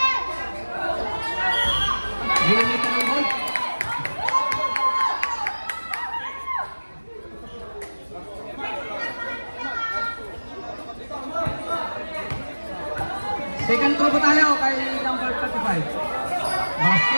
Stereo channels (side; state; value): both; inverted; correlation -1.00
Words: Ginamit ka ng ball. Second throw po tayo kay number 35.